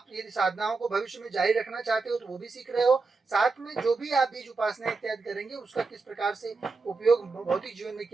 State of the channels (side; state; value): left; quieter; 4.1 dB